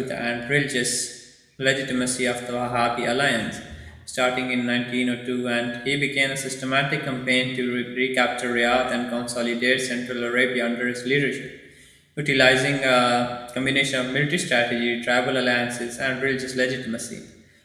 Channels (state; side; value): identical; both; correlation 1.00